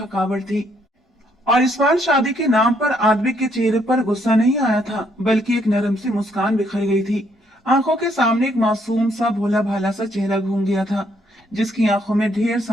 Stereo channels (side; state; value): both; normal; correlation 0.70